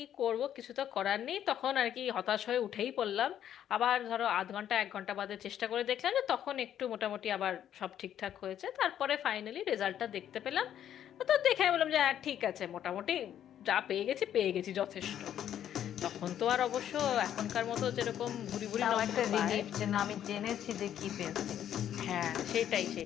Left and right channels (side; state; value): right; quieter; 10.4 dB